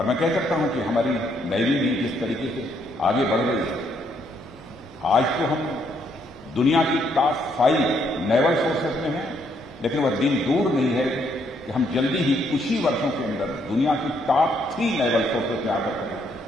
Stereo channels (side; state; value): right; noise; hum, 28 dB below the sound